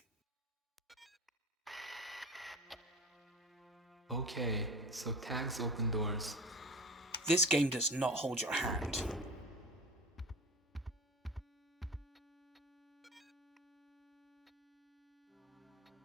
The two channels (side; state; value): both; normal; correlation 0.34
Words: Okay, so tags open doors. This game does not hold your hand.